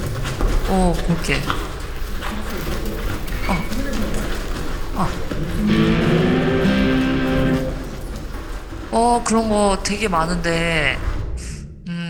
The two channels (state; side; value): identical; both; correlation 1.00